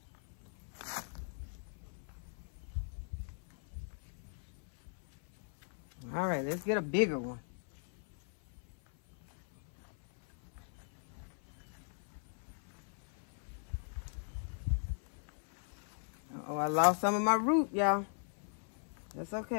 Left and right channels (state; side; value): silent; right; 52 dB below the other